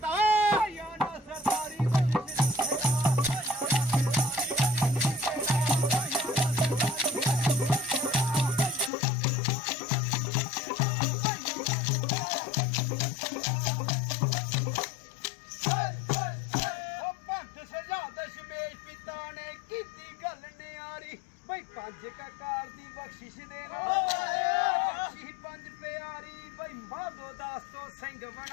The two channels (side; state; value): right; drops out; at 8.9 s